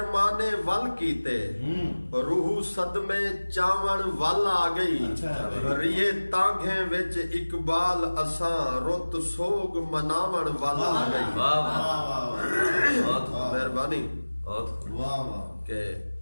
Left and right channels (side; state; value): both; inverted; correlation -1.00